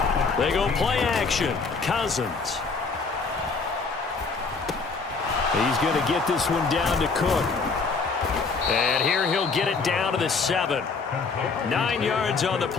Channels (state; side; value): quieter; right; 4.5 dB